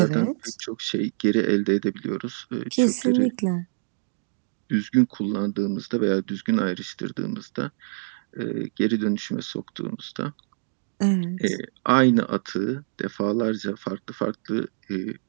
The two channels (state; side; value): silent; left; digital silence